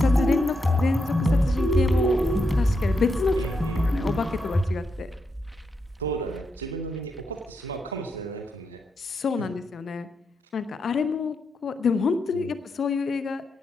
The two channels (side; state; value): both; normal; correlation 0.83